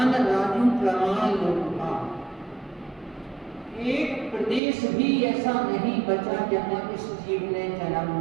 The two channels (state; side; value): drops out; left; at 4.6 s